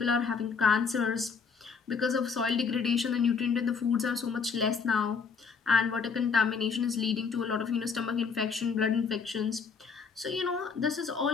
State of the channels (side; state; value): right; quieter; 5.5 dB